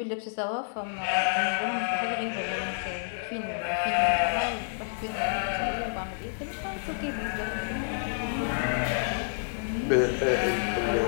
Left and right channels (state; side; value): silent; right; digital silence